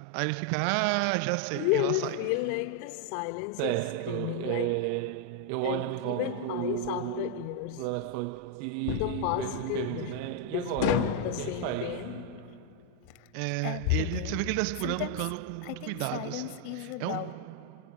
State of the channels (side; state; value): both; different; correlation 0.00